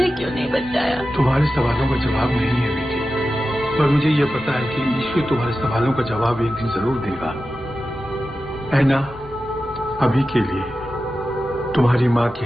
क्यों नहीं बचाया? तुम्हारे सवालों का जवाब नहीं है बेटी, पर मुझे यह पता है कि ईश्वर तुम्हारे सवालों का जवाब एक दिन जरूर देगा। ऐना, अभी के लिए, तुम्हारी माँ के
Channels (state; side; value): normal; both; correlation 0.93